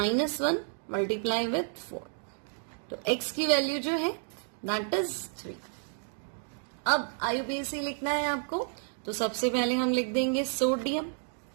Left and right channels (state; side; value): silent; left; 57 dB below the other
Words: multiply with 4, तो x की वैल्यू जो है दैट इज 3। अब आईयूपीएसी लिखना है आपको, तो सबसे पहले हम लिख देंगे sodium